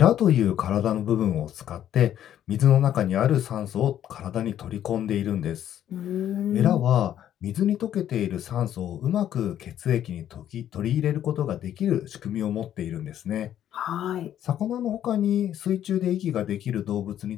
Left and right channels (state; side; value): quieter; right; 10.9 dB